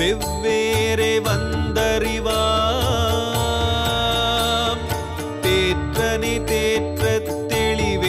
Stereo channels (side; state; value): both; identical; correlation 1.00